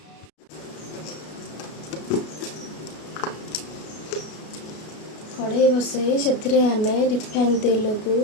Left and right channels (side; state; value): right; late; 33 ms